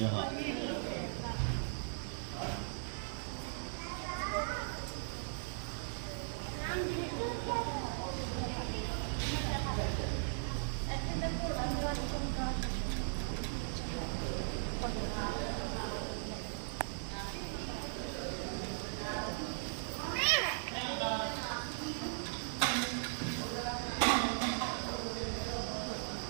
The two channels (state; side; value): silent; left; digital silence